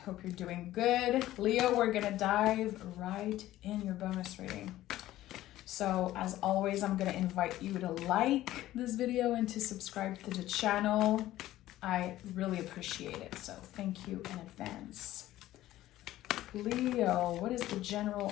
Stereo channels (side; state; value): right; quieter; 14.8 dB